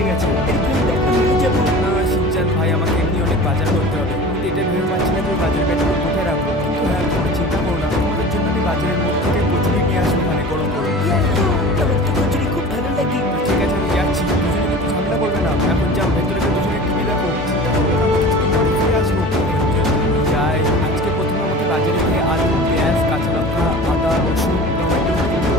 গেছে। না শিনচান ভাই, আমাকে এমনি অনেক বাজার করতে হবে, কিন্তু এটা ভেবে পাচ্ছি না যে বাজার ব্যাগগুলো কোথায় রাখবো। কিন্তু হ্যাঁ, তোমরা চিন্তা করো না, তোমাদের জন্য আমি বাজারের মধ্যে থেকে কচুরি নিয়ে আসবো, মানে গরম গরম। আমার তো কচুরি খুব ভালো লাগে। ঠিক আছে, আমি যাচ্ছি, দুজনে কিন্তু ঝামেলা করবে না। এখন যাও, ভেতরে গিয়ে দুজনে টিভি দেখো, চিন্তা করবে না, আমি কিছুক্ষণ পরে ফিরে আসবো। যাই, আজকে প্রথমে আমাকে বাজারে গিয়ে আলু পেঁয়াজ কাঁচা লঙ্কা আদা রসুন টমেটো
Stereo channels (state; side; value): normal; both; correlation 0.38